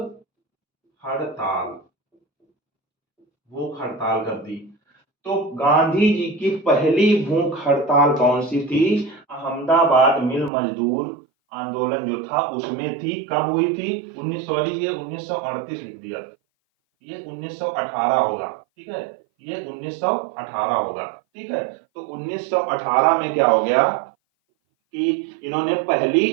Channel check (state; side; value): drops out; left; at 10.5 s